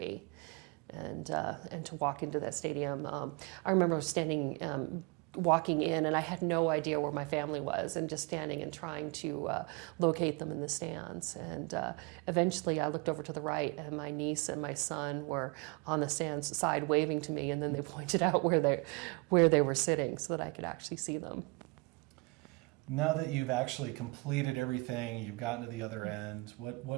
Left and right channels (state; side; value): quieter; left; 28.1 dB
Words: and to walk into that stadium. I remember walking in, and I had no idea where my family was, and just standing and trying to locate them in the stands. And eventually I looked over to the right, and my niece and my son were on the stands side waving to me, and then they pointed out where they were sitting so that I could actually see them. Now that you've actually completed everything, you've gotten to the other end,